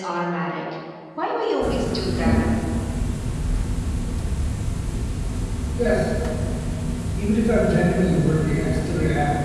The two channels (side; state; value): both; identical; correlation 1.00